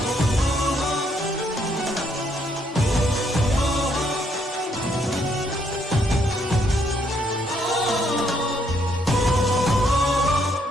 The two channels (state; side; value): normal; both; correlation 0.72